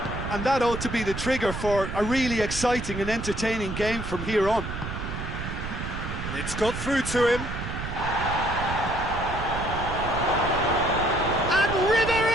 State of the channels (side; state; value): right; noise; rumble, 6 dB below the sound